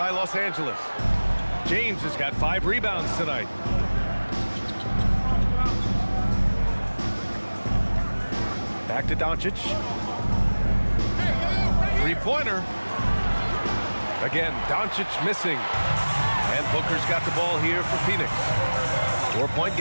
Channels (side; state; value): both; inverted; correlation -1.00